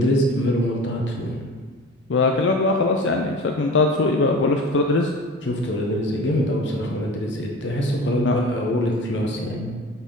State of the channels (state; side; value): normal; both; correlation 0.37